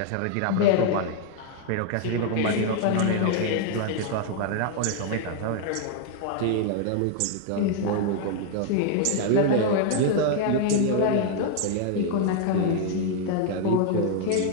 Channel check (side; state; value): both; different; correlation 0.00